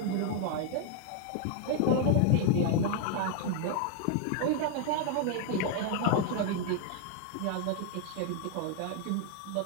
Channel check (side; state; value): both; different; correlation 0.00